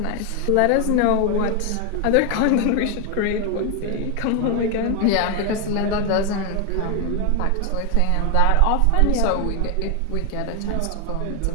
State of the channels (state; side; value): different; both; correlation 0.01